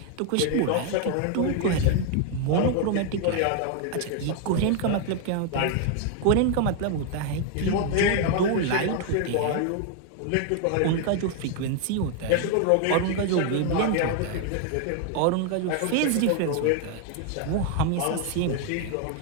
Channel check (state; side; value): different; both; correlation 0.01